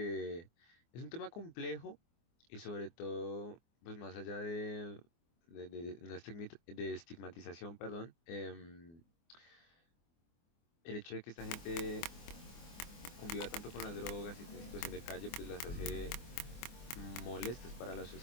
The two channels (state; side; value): late; right; 24 ms